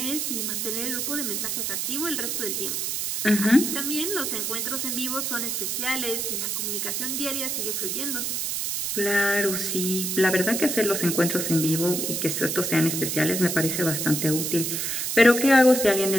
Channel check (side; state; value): right; noise; hiss, 1 dB below the sound